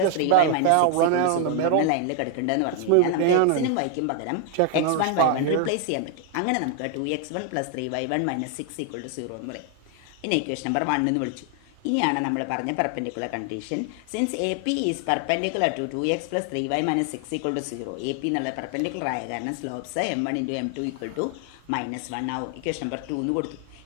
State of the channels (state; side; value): different; both; correlation 0.00